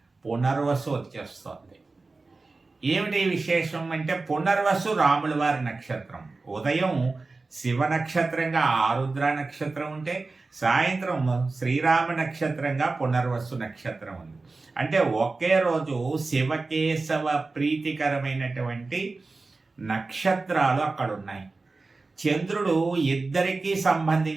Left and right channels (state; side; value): quieter; left; 3.7 dB